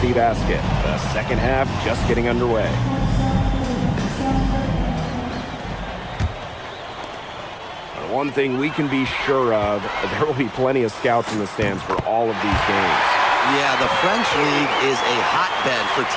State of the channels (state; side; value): identical; both; correlation 1.00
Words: Basket. The second half just getting underway. But one thing we can be sure of, there will be plenty of scouts in the stands for all of these games. Yeah, the French League is a hotbed for